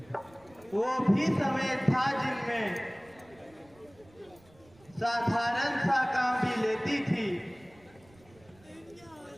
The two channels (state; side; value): noise; right; rumble, 27 dB below the sound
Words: वो भी समय था जिनमें साधारण सा काम भी लेती थी